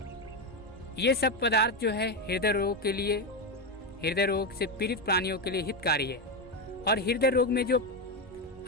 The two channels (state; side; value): normal; both; correlation 0.10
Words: ये सब पदार्थ जो है हृदय रोग से पीड़ित प्राणियों के लिए हितकारी है। और हृदय रोग में जो